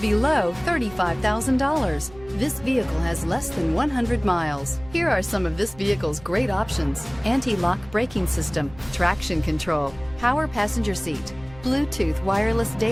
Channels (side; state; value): right; noise; hum, 21 dB below the sound